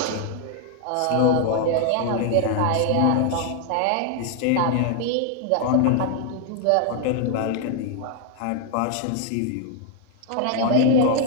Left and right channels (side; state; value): both; different; correlation 0.00